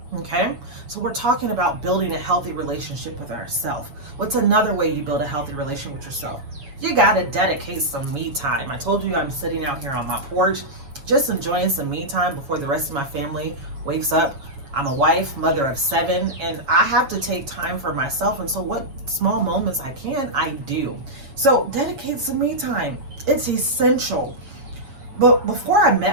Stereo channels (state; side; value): late; left; 7.2 ms